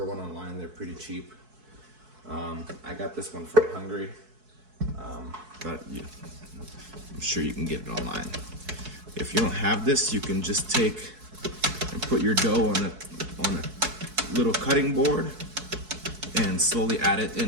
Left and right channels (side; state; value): left; late; 4.6 ms